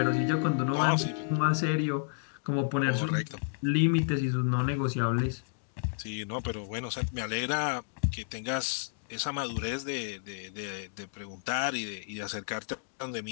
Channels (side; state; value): right; silent; digital silence